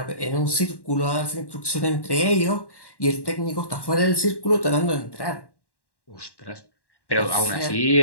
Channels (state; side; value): late; right; 1.1 ms